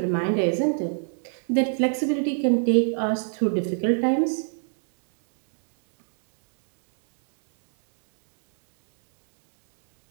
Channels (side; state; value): left; silent; digital silence